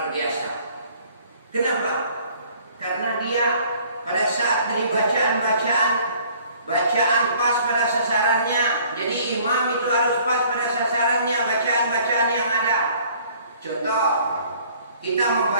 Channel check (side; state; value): both; inverted; correlation -0.56